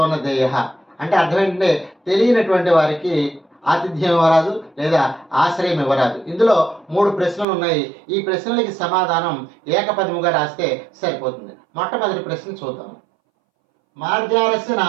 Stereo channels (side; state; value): left; drops out; at 7.5 s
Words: అంటే అర్థం ఏంటంటే తెలియనటువంటి వారికి ఆతిథ్యం ఇవ్వరాదు లేదా ఆశ్రయం ఇవ్వరాదు. ఇందులో 3 ప్రశ్నలు ఉన్నాయి. ఈ ప్రశ్నలకి సమాధానం ఏకపదముగా రాస్తే సరిపోతుంది. మొట్టమొదటి ప్రశ్న చూద్దాం. మార్జారస్య